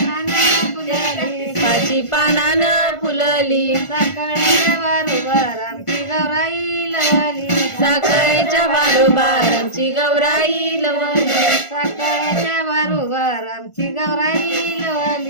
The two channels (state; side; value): late; right; 1.5 ms